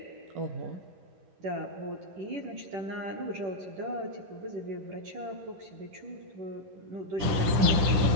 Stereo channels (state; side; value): late; left; 10 ms